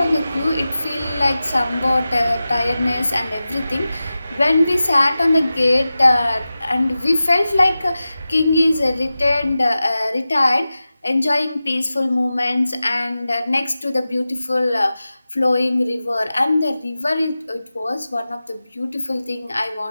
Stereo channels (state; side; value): inverted; both; correlation -0.95